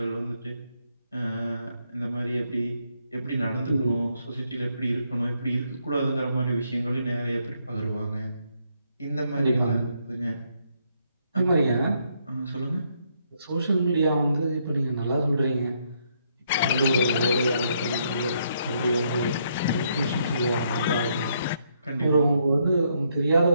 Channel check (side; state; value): both; inverted; correlation -0.74